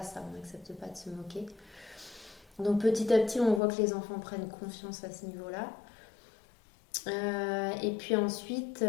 ça. On n'accepte pas de se moquer. Donc petit à petit, on voit que les enfants prennent confiance à ce niveau-là. Et puis ensuite,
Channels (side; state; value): right; drops out; at 3.6 s